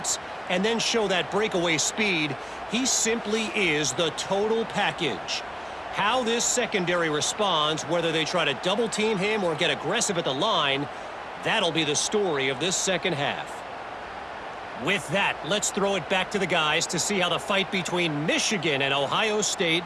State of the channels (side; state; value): both; identical; correlation 1.00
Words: and then show that breakaway speed. He simply is the total package. How this secondary responds, whether they try to double team him or get aggressive at the line, that'll be the story of this second half. With that, let's throw it back to the guys to see how the fight between Michigan and Ohio State